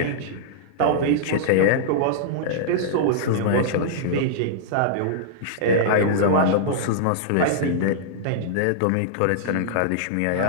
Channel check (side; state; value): both; different; correlation -0.02